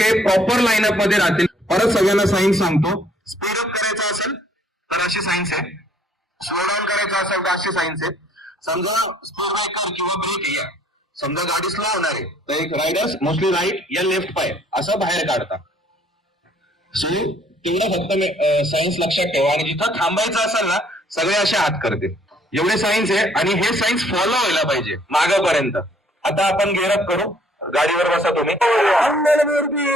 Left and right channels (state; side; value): normal; both; correlation 0.62